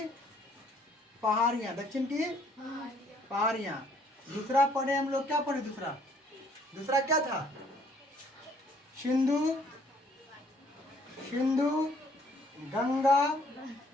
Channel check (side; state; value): both; normal; correlation 0.62